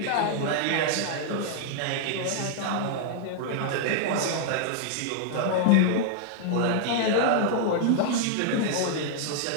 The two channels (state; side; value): different; both; correlation -0.01